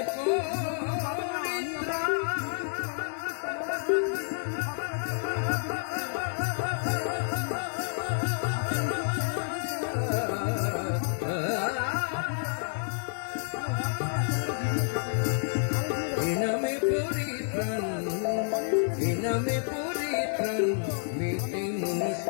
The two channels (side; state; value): right; silent; 58 dB below the other